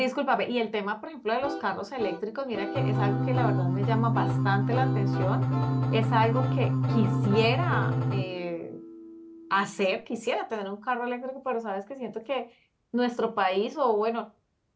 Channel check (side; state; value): both; identical; correlation 1.00